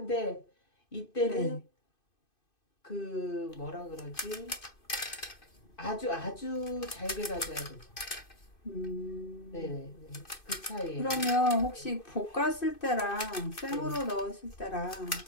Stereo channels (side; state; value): right; late; 2.5 ms